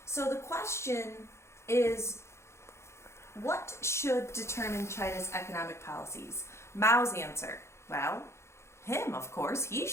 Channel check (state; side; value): late; right; 0.13 ms